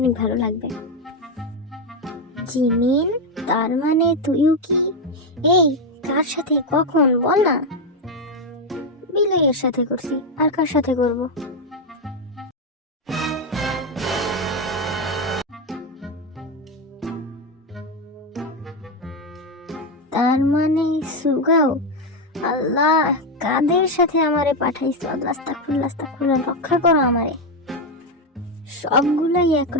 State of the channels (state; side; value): normal; both; correlation 0.08